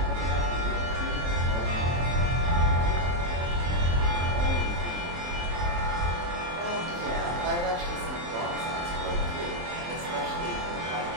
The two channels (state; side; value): late; left; 23 ms